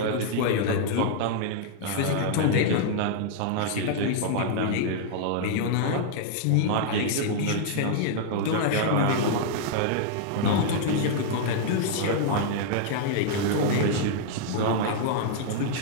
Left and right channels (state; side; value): different; both; correlation -0.01